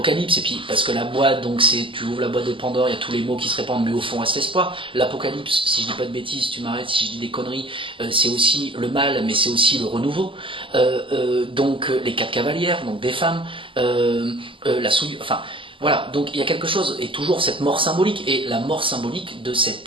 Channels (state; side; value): late; left; 0.25 ms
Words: et puis parce que la boîte, donc tu ouvres la boîte de Pandore, il y a tous les mots qui se répandent, mais au fond reste l'espoir. L'Apocalypse, si je dis pas de bêtises, tu m'arrêtes si je dis des conneries, c'est aussi le mal, mais c'est aussi le renouveau. Donc les 4 cavalières, donc des femmes, la souillure, enfin... Voilà, donc il y a quelque chose, et toujours cette mort symbolique, et la mort symbolique de cet